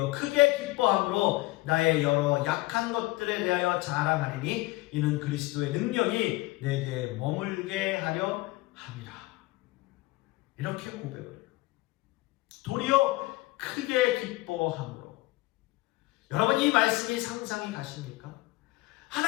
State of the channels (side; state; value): right; quieter; 20.7 dB